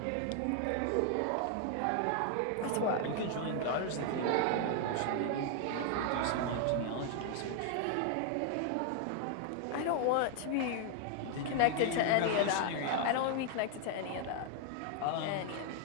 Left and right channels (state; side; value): different; both; correlation 0.00